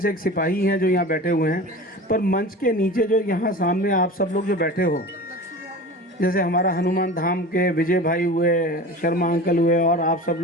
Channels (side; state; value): both; normal; correlation 0.34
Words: एक सिपाही हैं जो यहाँ बैठे हुए हैं, पर मंच के नीचे जो यहाँ सामने आप सब लोग जो बैठे हो, जैसे हमारा हनुमान धाम के विजय भाई हुए, शर्मा अंकल हुए और आप सब